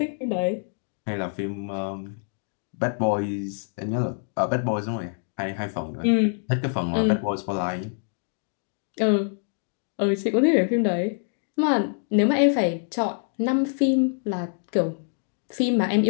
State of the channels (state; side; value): silent; right; digital silence